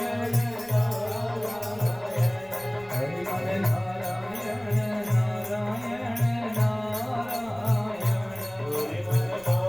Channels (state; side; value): noise; right; rumble, 24 dB below the sound